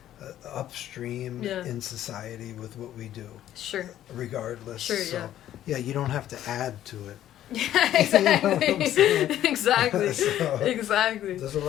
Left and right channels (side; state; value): right; quieter; 12.1 dB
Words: upstream Yeah. in society with what we do, Sure. regardless. Sure, So, yeah, you don't have to add to it. Yeah, You know what I'm exactly. saying? Exactly. So, Exactly. There's a